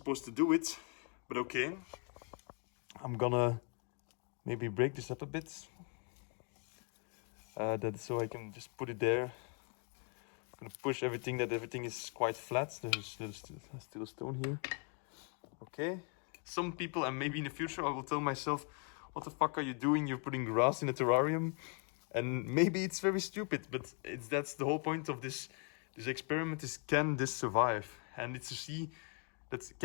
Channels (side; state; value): right; quieter; 36.7 dB